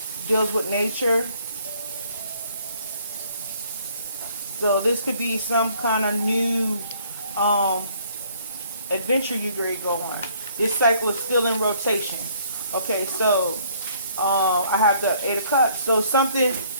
deals with nature. So this could be some kind of new adventure you're going to go on. This cycle is still in rotation. Okay, so I have the Eight of Cups. So something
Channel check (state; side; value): inverted; both; correlation -0.62